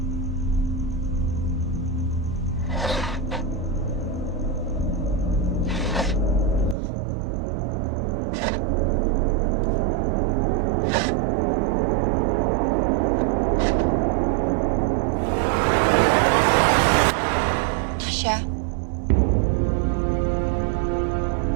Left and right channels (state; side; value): drops out; left; at 6.8 s